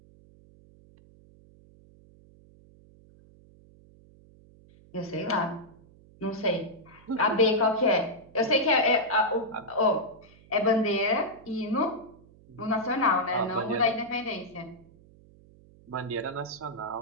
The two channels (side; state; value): right; noise; hum, 25 dB below the sound